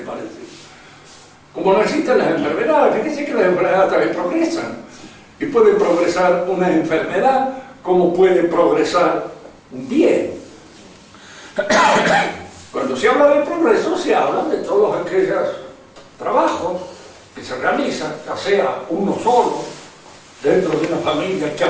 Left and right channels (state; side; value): identical; both; correlation 1.00